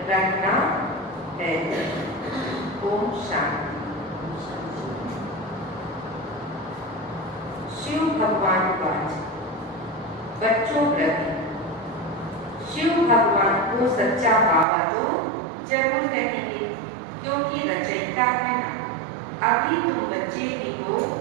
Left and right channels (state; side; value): drops out; left; at 14.7 s